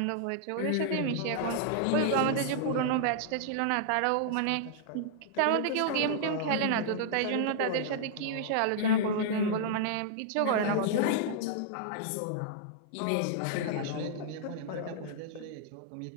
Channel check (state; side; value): different; both; correlation -0.01